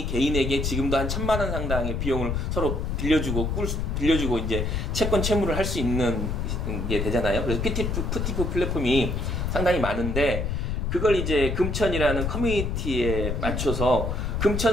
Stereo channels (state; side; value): noise; left; rumble, 1 dB below the sound